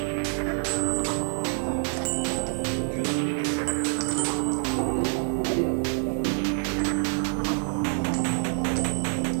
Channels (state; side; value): silent; left; digital silence